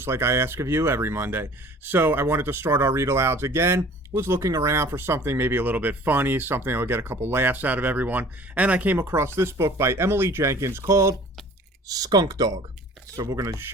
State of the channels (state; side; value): normal; both; correlation 0.48